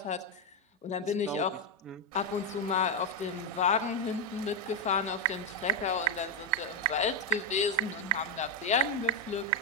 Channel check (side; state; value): both; normal; correlation 0.04